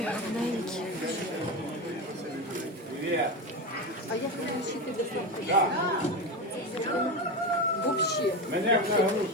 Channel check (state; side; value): normal; both; correlation 0.19